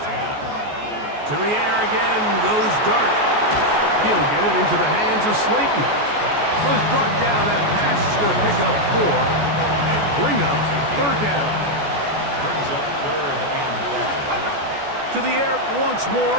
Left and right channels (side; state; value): left; late; 14 ms